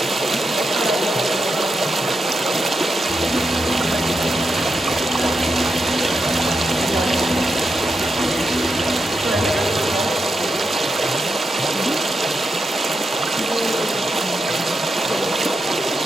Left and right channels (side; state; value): both; normal; correlation 0.85